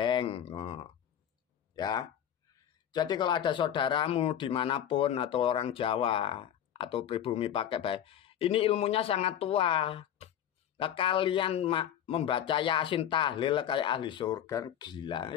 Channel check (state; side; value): quieter; right; 10.0 dB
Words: Ya, jadi kalau ada saudaramu dimanapun atau orang Jawa atau pribumi pakai baik, ini ilmunya sangat tua. Nah, kalian membaca Yasin tahlil kayak ahli surga, gila.